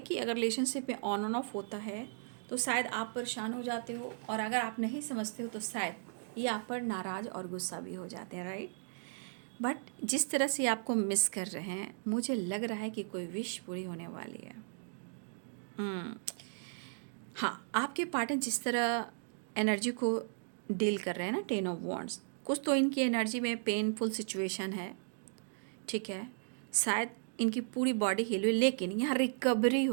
अगर रिलेशनशिप में ऑन एंड ऑफ होता है तो शायद आप परेशान हो जाते हो, और अगर आप नहीं समझते हो तो शायद ये आप पर नाराज़ और गुस्सा भी हो जाते हैं, राइट। बट जिस तरह से आपको मिस कर रहे हैं, मुझे लग रहा है कि कोई विश पूरी होने वाली है। हाँ, आपके पार्टनर जिस तरह एनर्जी को डील कर रहे हैं ना, 10 ऑफ वॉन्ड्स, कुछ तो इनकी एनर्जी में पेनफुल सिचुएशन है, ठीक है, शायद इनकी पूरी बॉडी हील हुई, लेकिन यहाँ रिकवरी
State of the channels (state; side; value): silent; left; digital silence